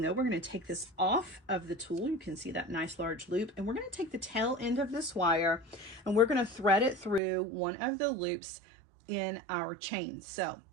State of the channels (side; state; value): left; drops out; at 7.2 s